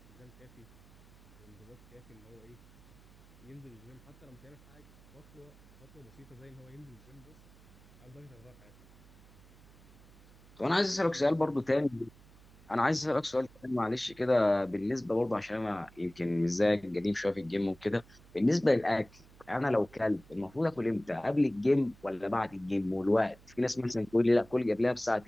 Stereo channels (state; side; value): noise; right; hum, 24 dB below the sound